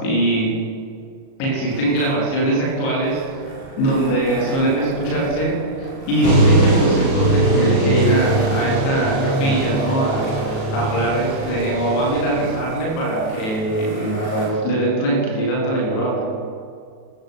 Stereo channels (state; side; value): late; right; 37 ms